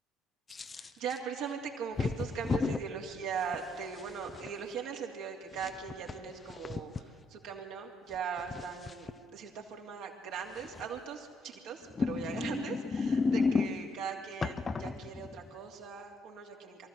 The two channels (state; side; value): normal; both; correlation 0.73